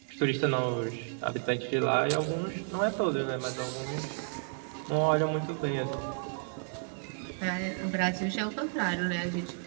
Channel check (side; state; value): left; silent; 57 dB below the other